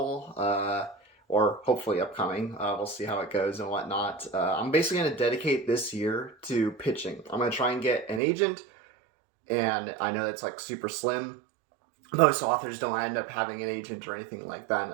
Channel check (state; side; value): drops out; left; at 8.2 s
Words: or hopefully upcoming. We'll see how it goes and whatnot. I'm basically going to dedicate this year to pitching. I'm going to try and get an agent, and I know that's like super slim. Most authors don't end up having an agent or anything like that,